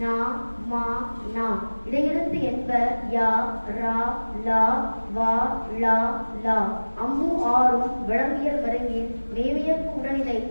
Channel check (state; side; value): inverted; both; correlation -1.00